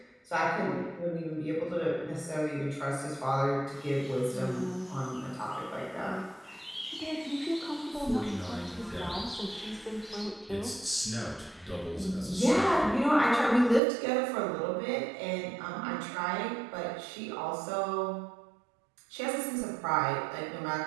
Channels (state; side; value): drops out; left; at 13.8 s